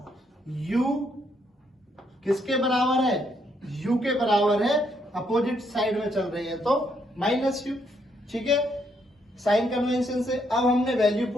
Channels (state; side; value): normal; both; correlation 0.74